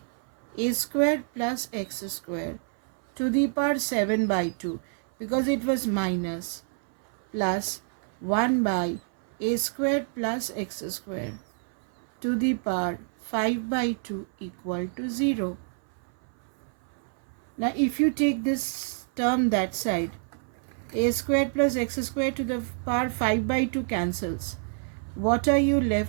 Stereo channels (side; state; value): left; silent; 58 dB below the other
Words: a square plus x square to the power 7 by 2, because it was minus, plus 1 by a square plus x square to the power 5 by 2 equal to 0. Now if you take this term that side, a square plus x square to the power 5 by 2 cancels. What are you